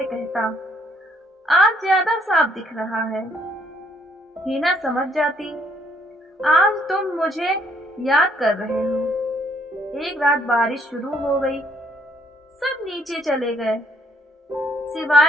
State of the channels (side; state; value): both; normal; correlation 0.67